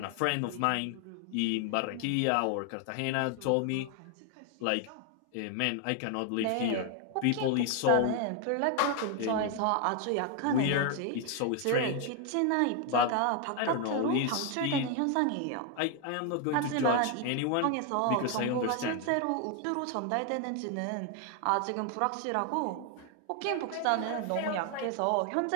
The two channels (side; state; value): both; different; correlation 0.01